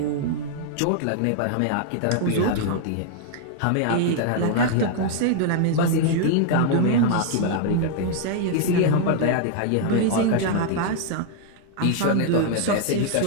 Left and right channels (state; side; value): different; both; correlation 0.00